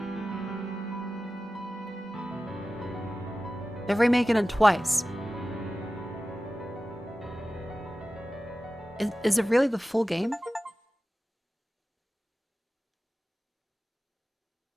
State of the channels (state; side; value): normal; both; correlation 0.95